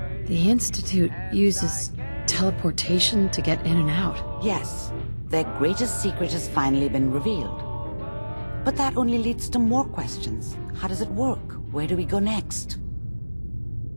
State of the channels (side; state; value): both; inverted; correlation -1.00